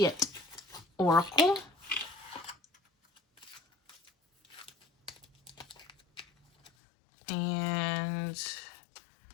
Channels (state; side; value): drops out; right; at 6.7 s